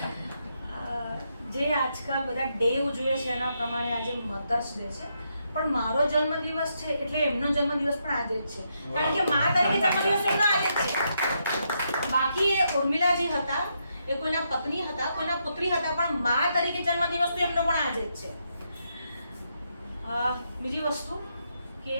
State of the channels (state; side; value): inverted; both; correlation -0.80